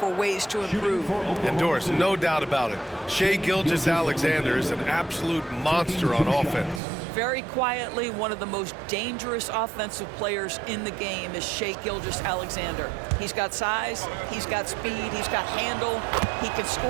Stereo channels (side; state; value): left; drops out; at 6.8 s